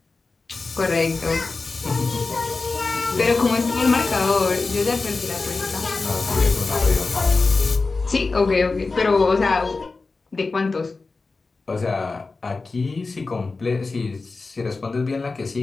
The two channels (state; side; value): quieter; right; 3.9 dB